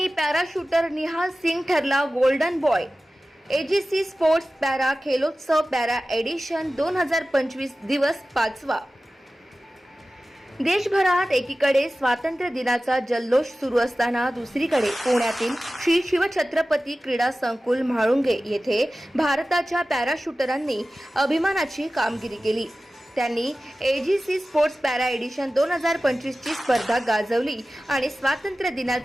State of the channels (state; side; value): normal; both; correlation 0.96